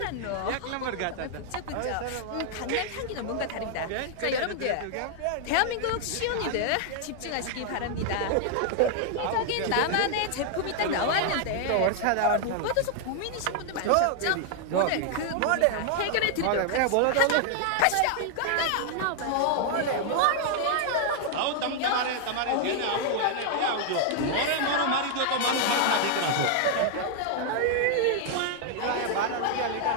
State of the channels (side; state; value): both; different; correlation 0.00